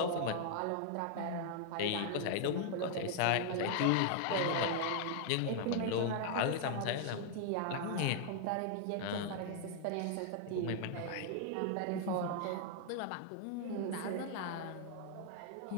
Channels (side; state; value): both; different; correlation 0.00